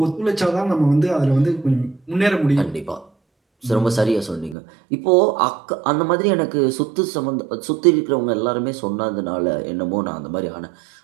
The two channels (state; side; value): drops out; left; at 4.5 s